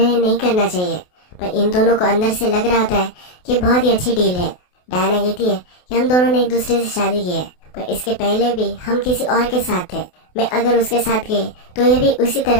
नहीं करना चाहिए, पर इन दोनों को अंदर से लग रहा होता है कि बहुत ही अच्छी डील है। डायना कहती है कि हम दोनों ने एक दूसरे से शादी की है, पर इसके पहले भी हम किसी और के साथ थे। मैं अगर उसके साथ गई तो ये भी उसी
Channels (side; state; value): right; late; 28 ms